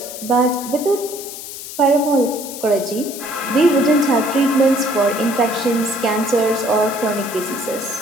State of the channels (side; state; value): left; noise; hiss, 11 dB below the sound